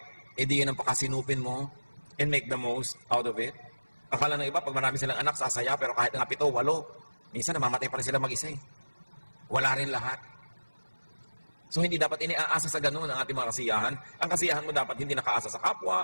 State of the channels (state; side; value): inverted; both; correlation -1.00